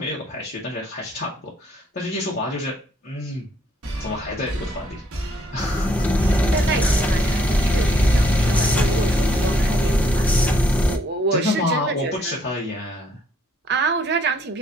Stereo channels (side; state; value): both; normal; correlation 0.68